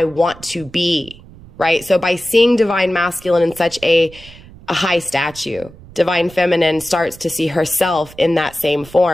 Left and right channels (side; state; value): right; noise; rumble, 21 dB below the sound